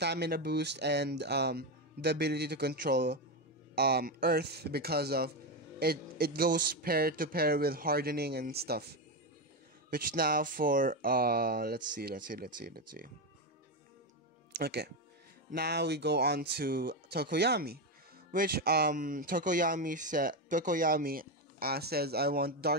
boost and the ability to control earth because of it goes pair to pair with hardening and stuff, which now for let's see. Okay, now we go on to Tokoyami, which Tokoyami says I want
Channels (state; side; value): normal; both; correlation 0.11